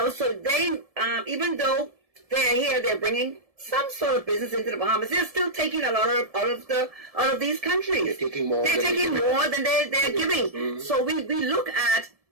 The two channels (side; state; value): left; late; 1.7 ms